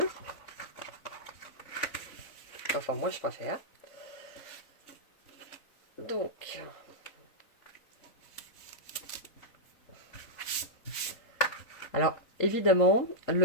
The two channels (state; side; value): late; right; 3.9 ms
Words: Enfin, moi, je préfère. Donc, Alors, évidemment,